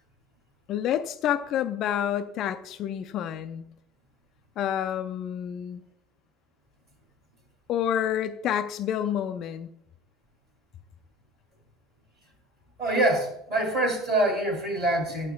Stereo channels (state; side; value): quieter; right; 3.1 dB